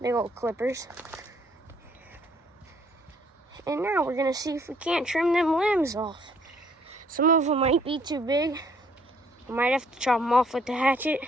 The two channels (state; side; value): normal; both; correlation 0.64